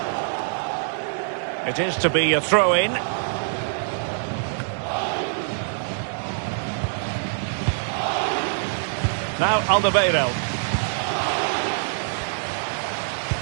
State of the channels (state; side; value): silent; left; 62 dB below the other